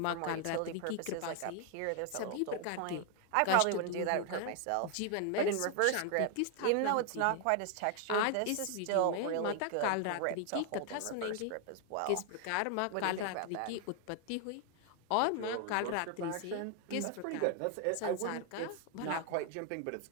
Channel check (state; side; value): different; both; correlation 0.00